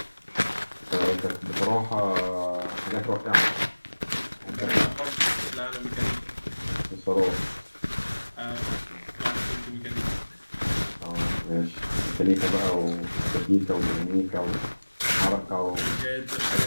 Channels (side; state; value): both; inverted; correlation -1.00